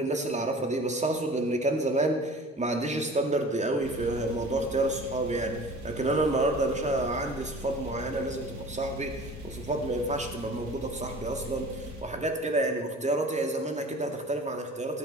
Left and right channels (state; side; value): normal; both; correlation 0.43